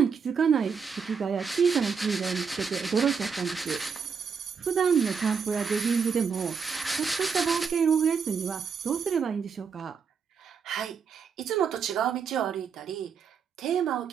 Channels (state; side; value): quieter; left; 6.1 dB